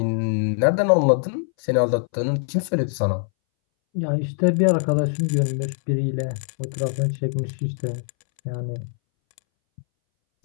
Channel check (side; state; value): right; silent; 62 dB below the other